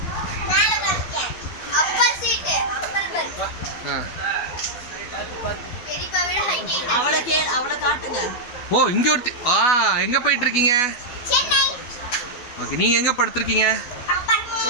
ஓ, இங்கே ஒருத்தி. எங்கே போயிட்டுருக்கீங்க? ஓகே, நீங்கள் எங்கே படுத்துருக்கீங்க?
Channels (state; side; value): late; right; 12 ms